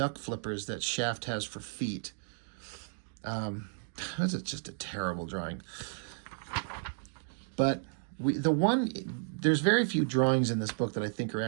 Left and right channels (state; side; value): silent; left; digital silence